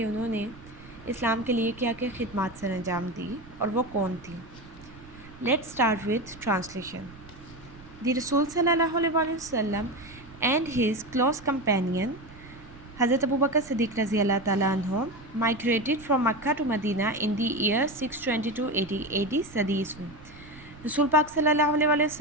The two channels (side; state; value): right; noise; rumble, 20 dB below the sound